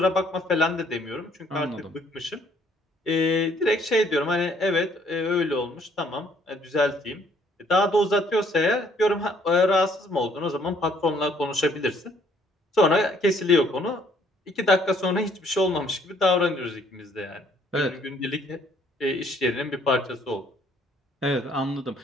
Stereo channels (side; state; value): both; normal; correlation 0.64